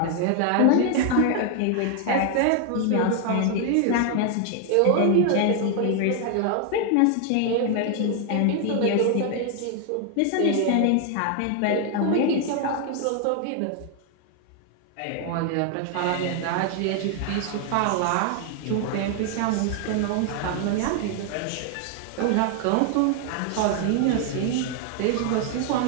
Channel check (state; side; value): different; both; correlation 0.00